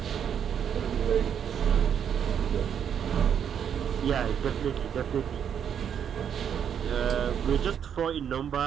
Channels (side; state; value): left; quieter; 8.4 dB